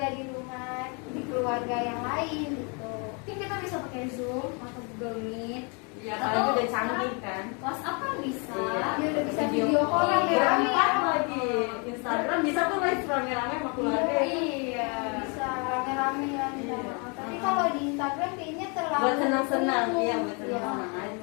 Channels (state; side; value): quieter; right; 34.2 dB